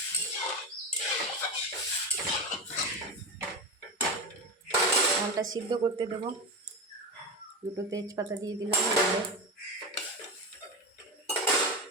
ডালটা সিদ্ধ করতে দেবো। দুটো তেজপাতা দিয়ে দিলাম,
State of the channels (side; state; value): both; normal; correlation 0.21